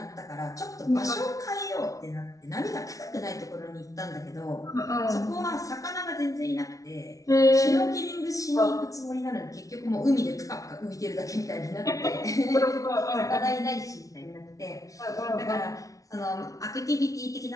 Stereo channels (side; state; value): right; late; 0.17 ms